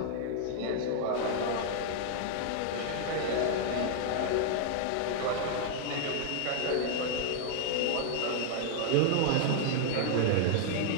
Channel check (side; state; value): both; different; correlation -0.01